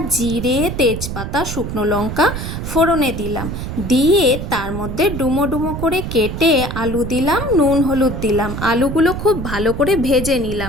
জিরে, তেজপাতা, শুকনো লঙ্কা ফোড়নে দিলাম। দিয়ে তার মধ্যে ডুমো ডুমো করে কেটে আলু দিলাম, নুন হলুদ দিলাম। আলুগুলো খুব ভালো করে ভেজে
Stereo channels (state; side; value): noise; right; rumble, 6 dB below the sound